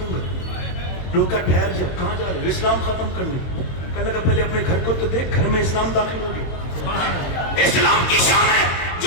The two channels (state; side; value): late; right; 22 ms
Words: گا. لوگ کا ٹھہر جا, کہاں جا رہے؟ اسلام ختم کرنے. کہنے لگا پہلے اپنے گھر کو تو دیکھ, گھر میں اسلام داخل ہو گیا. اسلام کی شان ہے